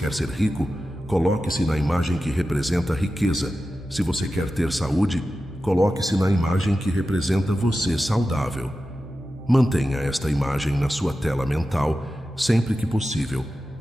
ser rico, coloque-se na imagem que representa a riqueza. Se você quer ter saúde, coloque-se na imagem que representa você saudável. Mantenha esta imagem na sua tela mental sempre que possível.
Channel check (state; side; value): normal; both; correlation 0.93